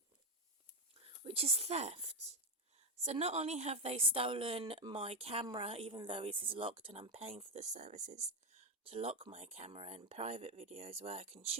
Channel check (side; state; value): both; normal; correlation 0.10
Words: which is theft. So not only have they stolen my camera, even though it is locked and I'm paying for the services to lock my camera and private videos where I can